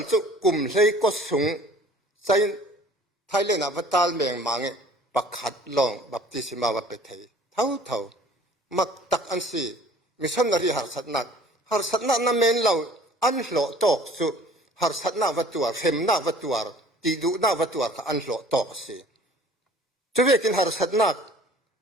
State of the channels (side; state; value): both; normal; correlation 0.50